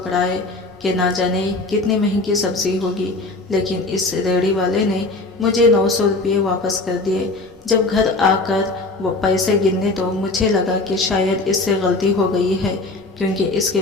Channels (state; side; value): quieter; right; 3.2 dB